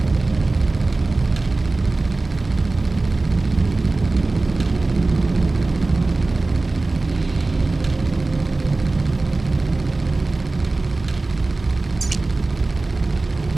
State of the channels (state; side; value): quieter; left; 3.3 dB